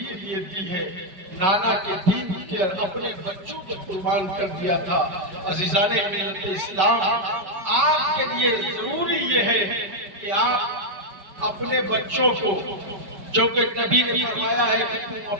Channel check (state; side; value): late; left; 5.4 ms